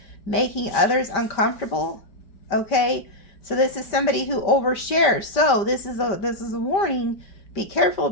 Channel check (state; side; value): late; right; 5.1 ms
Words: making others uncomfortable. Okay, so this is somebody who overshares. So this is a warning. Be careful